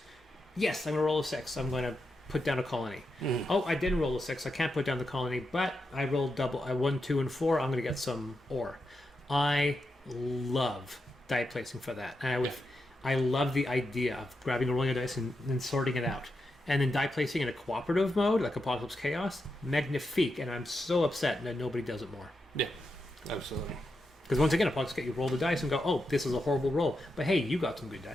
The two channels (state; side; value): normal; both; correlation 0.86